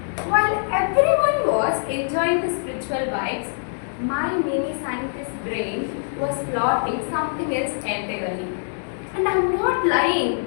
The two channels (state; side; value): silent; right; digital silence